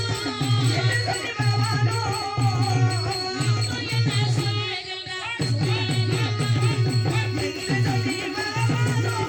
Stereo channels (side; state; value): both; identical; correlation 1.00